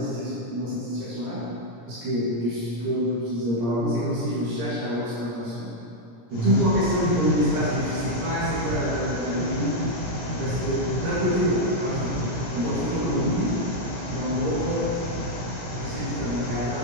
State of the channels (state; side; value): late; left; 17 ms